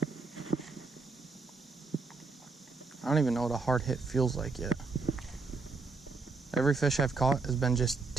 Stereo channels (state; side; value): quieter; left; 4.1 dB